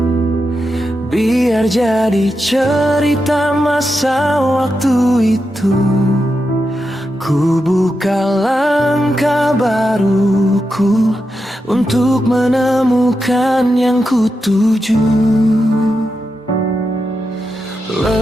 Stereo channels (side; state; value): both; normal; correlation 0.87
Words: biar jadi cerita masa waktu itu. Ku buka langkah baruku untuk menemukan yang ku tuju.